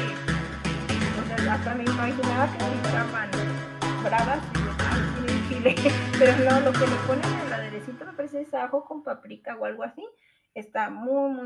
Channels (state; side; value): identical; both; correlation 1.00